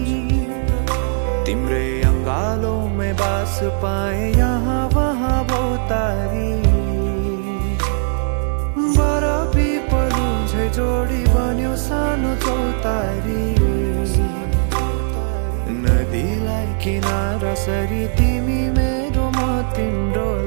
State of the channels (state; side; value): silent; left; digital silence